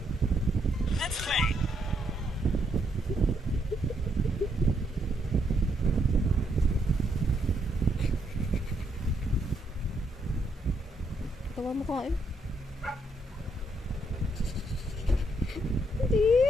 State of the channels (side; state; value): both; normal; correlation 0.75